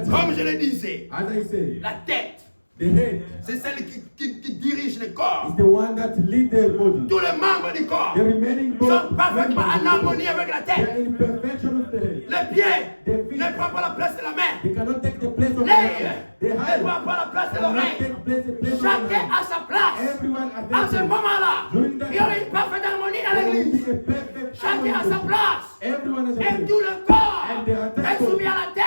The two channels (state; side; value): inverted; both; correlation -1.00